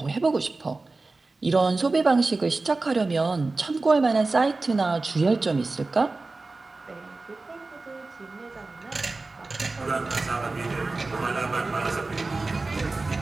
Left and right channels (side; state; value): left; quieter; 3.5 dB